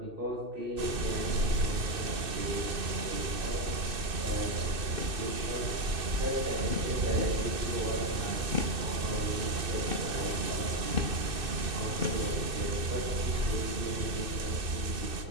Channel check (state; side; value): late; left; 2.6 ms